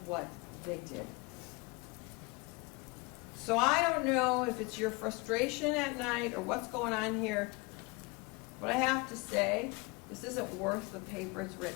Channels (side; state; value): right; quieter; 26.4 dB